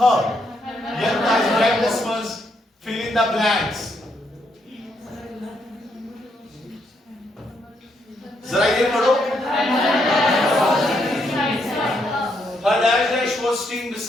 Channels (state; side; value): normal; both; correlation 0.76